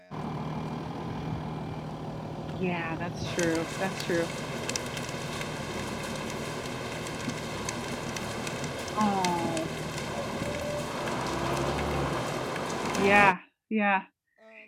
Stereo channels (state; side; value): identical; both; correlation 1.00